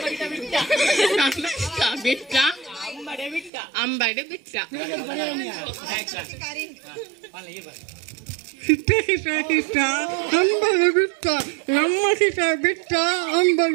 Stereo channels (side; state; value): left; drops out; at 3.5 s